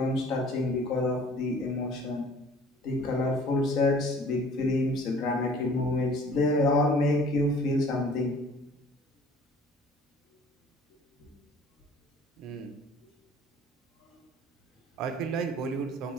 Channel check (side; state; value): both; normal; correlation 0.51